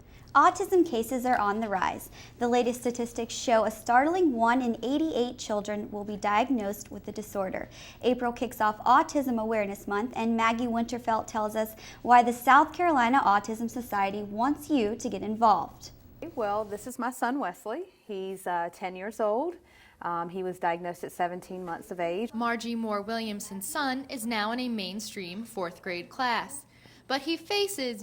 Autism cases are on the rise. The latest statistics show a startling 1 in 88 children will be diagnosed with the disorder. April kicks off Autism Awareness Month, and Maggie Winterfelt tells us why the South Carolina Autism Society wants you to get involved. Well, this is my son Wesley. He's 10 years old. He was diagnosed at 17 months of age. Margie Moore Williamson's son is now in a mainstream 4th grade class, but he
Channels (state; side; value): identical; both; correlation 1.00